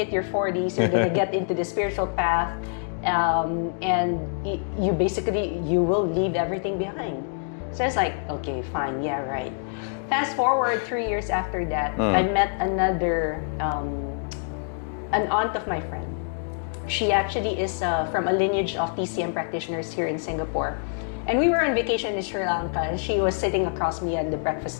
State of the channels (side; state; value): right; silent; digital silence